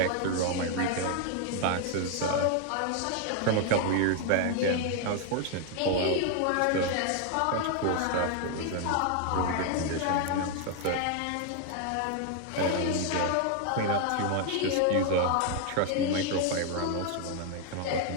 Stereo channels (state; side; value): different; both; correlation 0.01